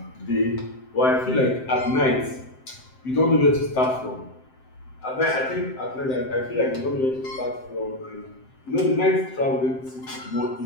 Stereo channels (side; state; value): right; late; 7.7 ms